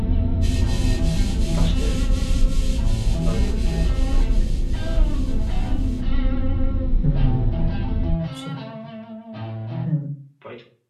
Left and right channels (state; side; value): identical; both; correlation 1.00